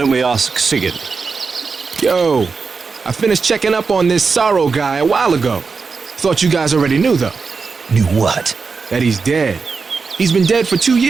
we ask Sigurd? Yo, I finished checking up on this Sorrow guy a while ago. Thought you guys already knew, though. Knew what? That he's dead. He's been dead for 2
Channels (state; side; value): quieter; left; 4.9 dB